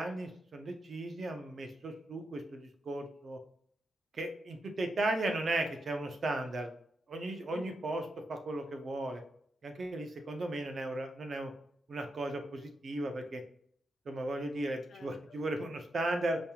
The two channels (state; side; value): normal; both; correlation 0.85